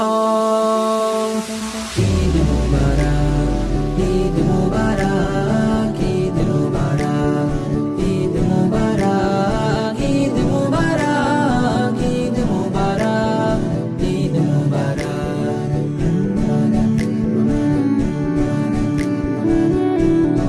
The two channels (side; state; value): both; identical; correlation 1.00